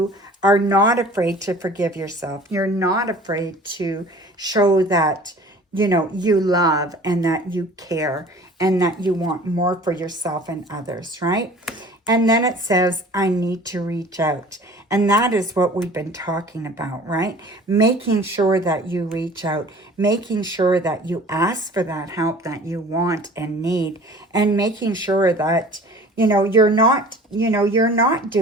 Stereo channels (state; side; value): normal; both; correlation 0.46